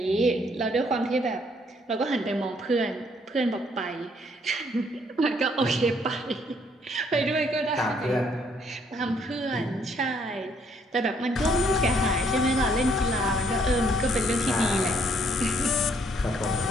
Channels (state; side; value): normal; both; correlation 0.67